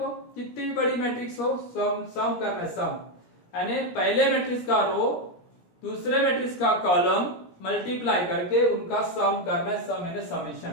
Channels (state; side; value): late; right; 17 ms